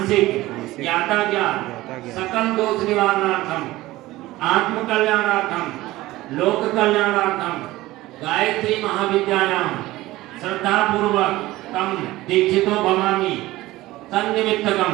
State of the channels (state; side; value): quieter; left; 17.7 dB